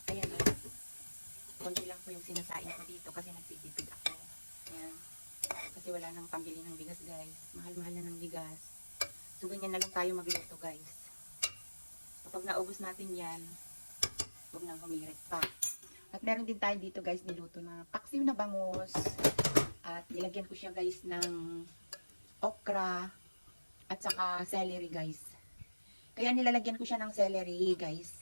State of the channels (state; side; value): inverted; both; correlation -1.00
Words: Ayan guys. Konti lang po yung sinasain ko dito kasi nagtitipid ako. Ayan. Kasi wala nang pambili ng bigas guys. Mahal-mahal na ng bigas. So ganyan na lang tayo magluto guys. Kapag naubos natin yan, huwag nang humirit pa. At meron din tayo dito guys niluto na paksiw na bangus. At nilagyan ko siya guys ng okra at saka celery guys. Kaya nilalagyan ko siya ng celery guys